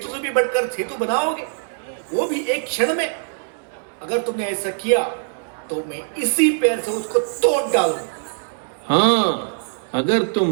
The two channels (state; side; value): silent; left; 64 dB below the other